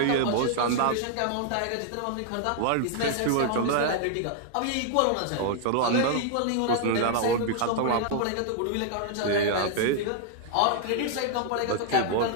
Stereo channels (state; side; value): different; both; correlation 0.00